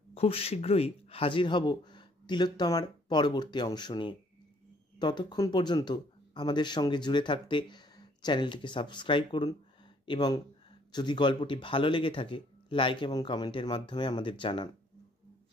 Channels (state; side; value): normal; both; correlation 0.63